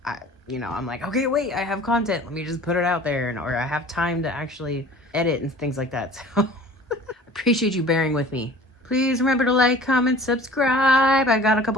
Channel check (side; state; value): both; normal; correlation 0.46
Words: I'm like, okay, wait, I have content. Let me just put it out there, or I have time to actually edit and things like that. So appreciate you bearing with me. Please remember to like, comment, subscribe. I got a